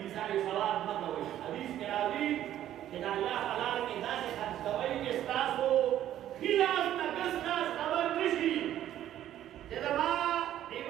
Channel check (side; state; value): left; quieter; 12.0 dB